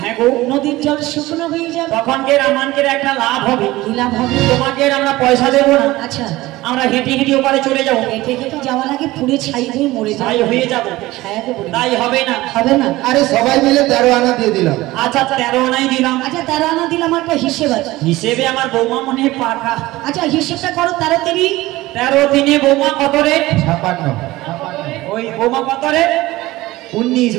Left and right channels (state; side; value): quieter; left; 18.4 dB